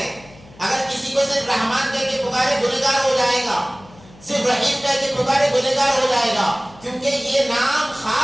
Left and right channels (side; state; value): left; noise; hum, 24 dB below the sound